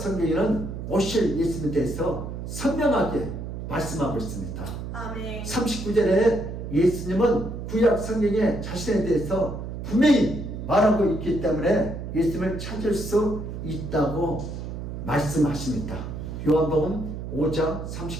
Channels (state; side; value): noise; right; hum, 7 dB below the sound